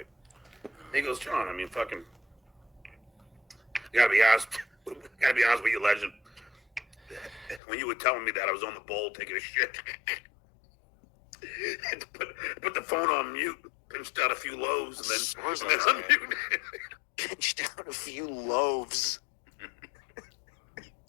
He goes, John, I mean, fucking, you gotta be honest with you, legend. When you were telling me that, I was on the bowl taking a shit. Had to put the phone on mute, pinched out a few loaves, and then unmuted. Pinched out a few loaves.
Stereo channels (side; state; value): right; drops out; at 7.6 s